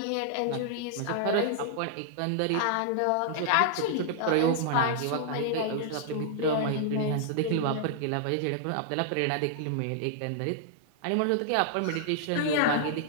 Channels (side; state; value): both; different; correlation -0.01